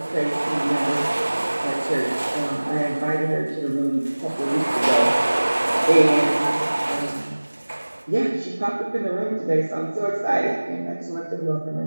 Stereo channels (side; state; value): both; inverted; correlation -1.00